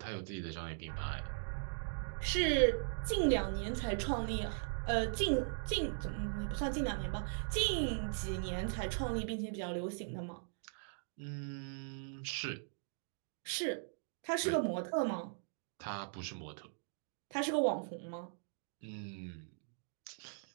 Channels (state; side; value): silent; left; digital silence